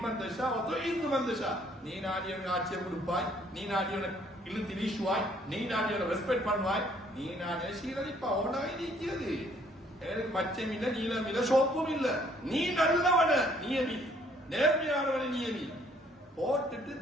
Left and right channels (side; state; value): both; normal; correlation 0.63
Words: தஷா வ துஇது மன் தஷா நீ நாடியவனுக்கு ஆட்சியை கொடுப்பாய் நீ நாடியவனுக்கு இழுத்து வீசுவாய் நீ நாடியவனை ரெஸ்பெக்ட் பண்ணுவாய் நீ நாடிய சீரழிப்பா உனக்கு இருக்கிறது எனக்கு மச்சம் இல்ல நீளம் இல்ல சோப்பும் இல்ல நீ நல்லவன நியமி நேர்மையானவன நியமி போட்டுட்டு